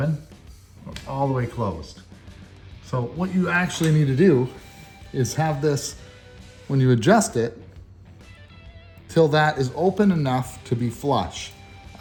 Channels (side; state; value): both; identical; correlation 1.00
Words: or all the way closed. So what you actually need to do is have this, when you adjust it, till that is open enough to be flush.